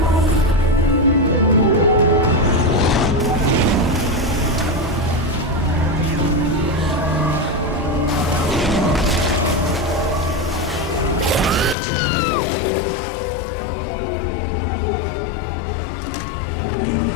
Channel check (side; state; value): right; drops out; at 11.8 s